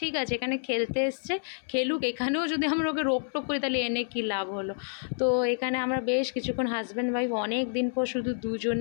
আছে, এখানে খেলতে এসছে, খেলুক, এখানেও যদি আমরা ওকে রোকটোক করি তাহলে এনে কী লাভ হলো। তো এখানে আমরা বেশ কিছুক্ষণ হাজব্যান্ড ওয়াইফ অনেক দিন পর শুধু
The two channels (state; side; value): silent; right; 59 dB below the other